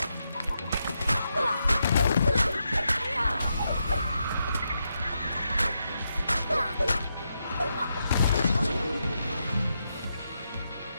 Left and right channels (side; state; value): both; inverted; correlation -0.84